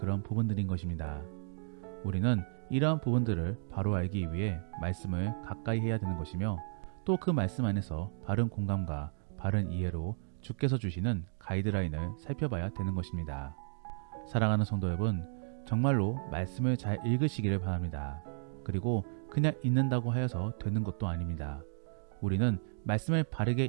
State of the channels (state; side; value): silent; left; digital silence